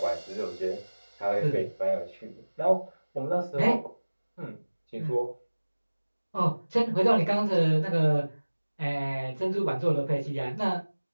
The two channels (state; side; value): inverted; both; correlation -1.00